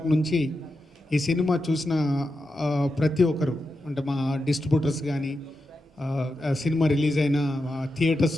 నుంచి ఈ సినిమా చూసిన ప్రతి ఒక్కరు, అంటే మా డిస్ట్రిబ్యూటర్స్ కానీ, సినిమా రిలీజ్ అయిన థియేటర్స్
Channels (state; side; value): normal; both; correlation 0.88